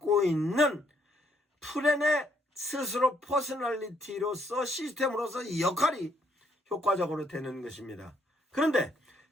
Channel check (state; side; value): normal; both; correlation 0.70